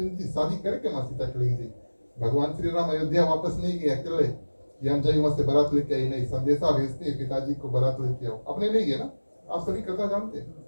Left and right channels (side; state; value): both; inverted; correlation -1.00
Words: जी शादी करके माँ सीता चली गई। भगवान श्री राम अयोध्या वापस नहीं गए अकेले कि हम जाइए वहां से बारात लेके आई, नहीं, संदेशा भेजते हैं पिताजी को बारात लेके आओ, अपने नहीं गए ना, आप सभी कथा जानते हैं,